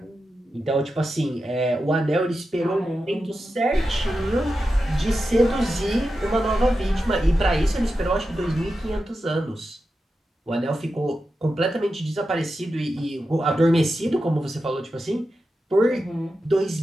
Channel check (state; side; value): normal; both; correlation 0.90